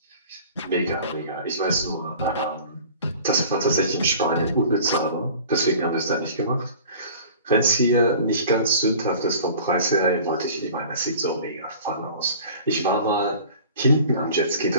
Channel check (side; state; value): both; inverted; correlation -0.44